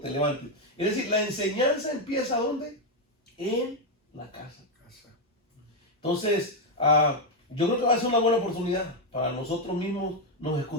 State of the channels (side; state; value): both; normal; correlation 0.04